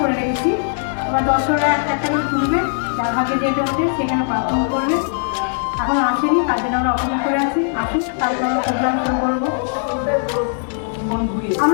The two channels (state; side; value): silent; right; 66 dB below the other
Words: করে রেখেছি। এবার দর্শকরা একটা একটা করে তুলবে, যার ভাগে যেটা ওঠে সেখানে পারফর্ম করবে। এখন আসেনি, তার জন্য আমরা অপেক্ষা করে আছি, আসুন তারপর আমরা প্রোগ্রাম শুরু করবো।